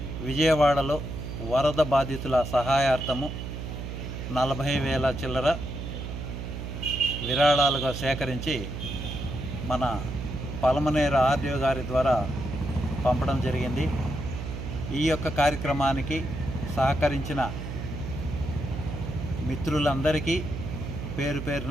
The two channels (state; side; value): noise; right; hum, 7 dB below the sound